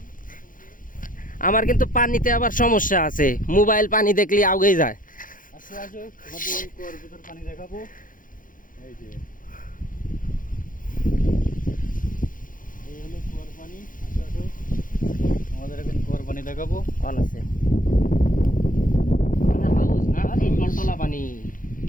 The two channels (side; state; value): right; late; 0.39 ms